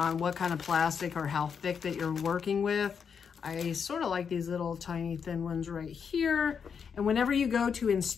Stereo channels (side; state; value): right; quieter; 6.6 dB